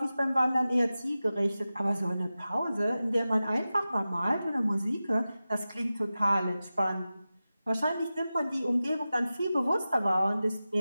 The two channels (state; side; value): inverted; both; correlation -0.95